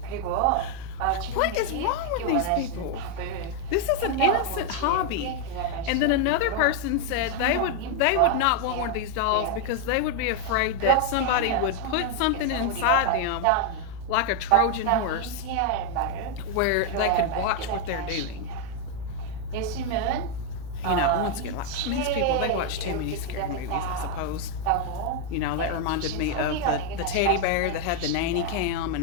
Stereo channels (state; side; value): different; both; correlation 0.00